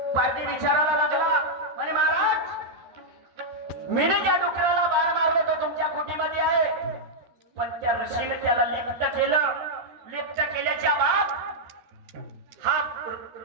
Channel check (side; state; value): left; late; 13 ms